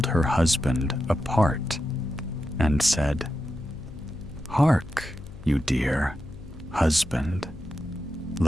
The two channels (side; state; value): left; noise; hum, 16 dB below the sound